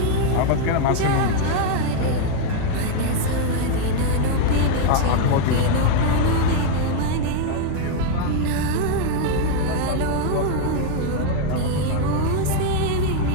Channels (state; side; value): different; both; correlation 0.00